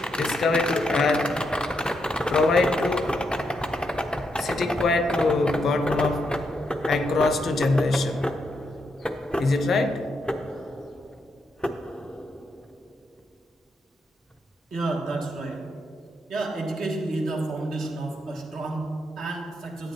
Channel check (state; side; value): normal; both; correlation 0.80